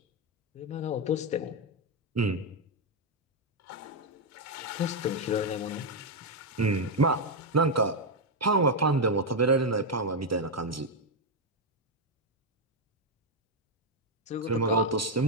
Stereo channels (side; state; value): both; normal; correlation 0.01